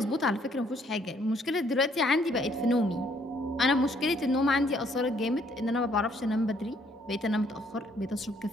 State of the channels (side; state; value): both; normal; correlation 0.66